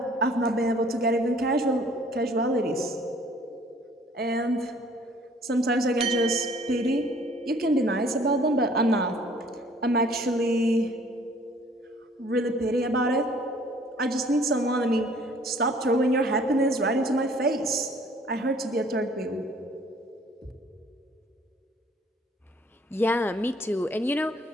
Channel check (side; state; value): both; normal; correlation 0.56